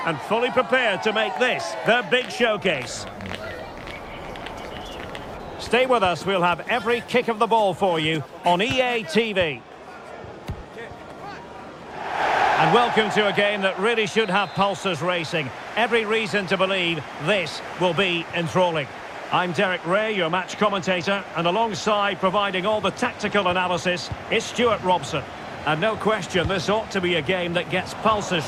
and fully prepared to make this their big showcase. Stay with us, we'll have every kick of the ball for you on EA TV. And welcome to a game that really should have pulses racing. Every reason to believe this will be enthralling. I'm Derek Ray, your match commentator, and alongside providing all the tactical analysis is Stuart Robson. And no question, this ought to be a game that gets pulses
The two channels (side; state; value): both; identical; correlation 1.00